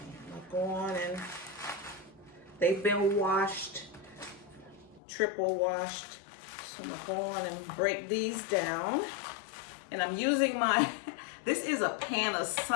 I'll go on and they've been washed, triple washed. So I'm gonna go on and break these down. And I'm using this is a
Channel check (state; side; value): drops out; right; at 5.0 s